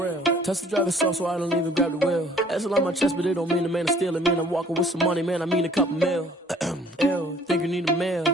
Touch the driver's soft, so I don't even grab the wheel. That's on my chest, but it don't mean the man is stealing. Man, I'm walking with some money, man, I mean a couple mil. Ew, think you need a meal.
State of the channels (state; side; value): normal; both; correlation 0.56